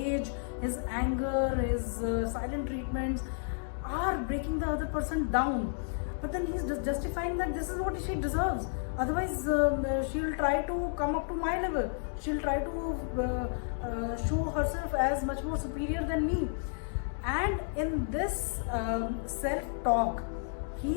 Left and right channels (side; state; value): right; silent; digital silence